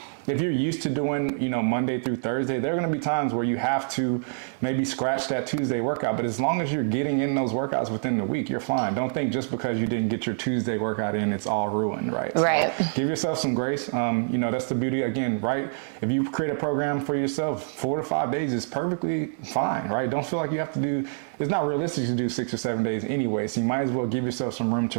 If you're used to doing, you know, Monday through Thursday, there are going to be times where you have to maybe scratch that Tuesday workout. But as long as you're getting in those workouts within the week, you're fine. Don't think just because you didn't get your Tuesday workout in, it's all ruined, right? Right. So give yourself some grace. You know, that's the beauty again, right? If you create a program for yourself, 4 to 5 days is perfectly fine, right? Don't feel like you have to do, it's not realistic to do 6 or 7 days anyway. So you might as well give yourself some room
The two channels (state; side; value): silent; left; digital silence